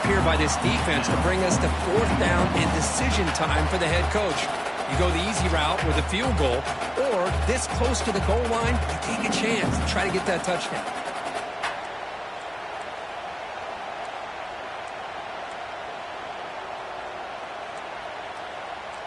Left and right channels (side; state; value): both; identical; correlation 1.00